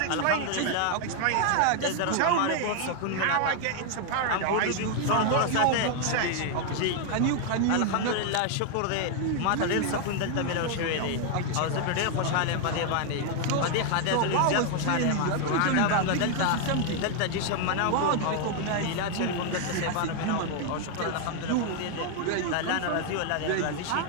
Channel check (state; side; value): different; both; correlation 0.00